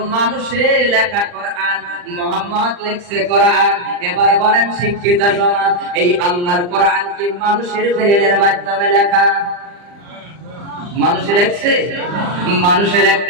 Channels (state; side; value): late; left; 40 ms